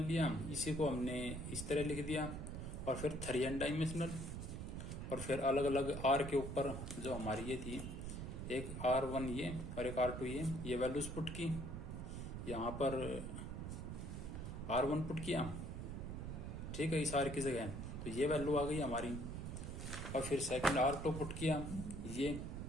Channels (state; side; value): noise; right; rumble, 6 dB below the sound